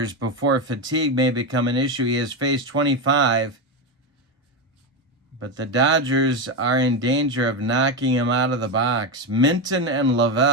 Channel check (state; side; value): normal; both; correlation 0.12